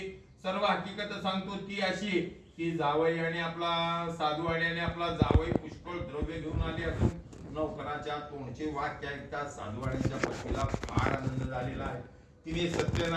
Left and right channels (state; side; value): identical; both; correlation 1.00